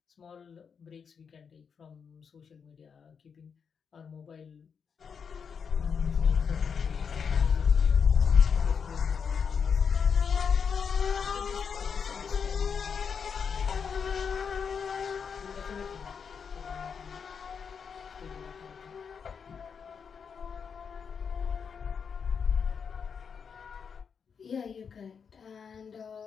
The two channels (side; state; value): right; quieter; 6.4 dB